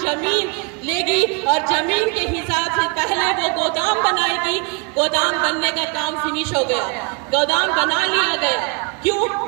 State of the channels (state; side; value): quieter; left; 32.6 dB